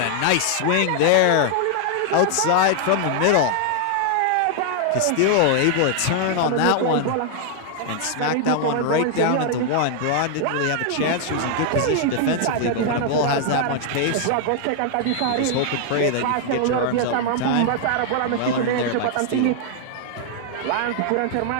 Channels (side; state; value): both; different; correlation 0.00